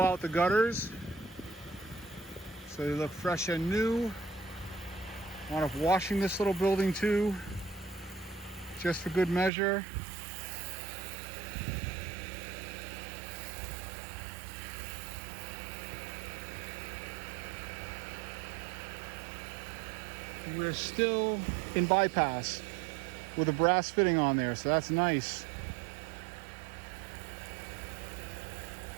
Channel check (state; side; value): drops out; left; at 9.5 s